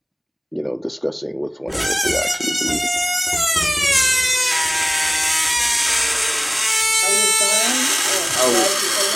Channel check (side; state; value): both; identical; correlation 1.00